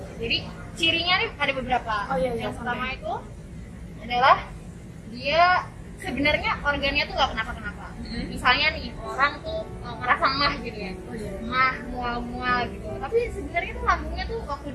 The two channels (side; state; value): both; identical; correlation 1.00